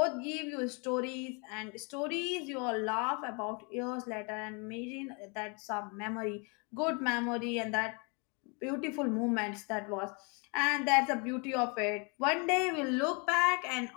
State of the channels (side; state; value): right; quieter; 33.3 dB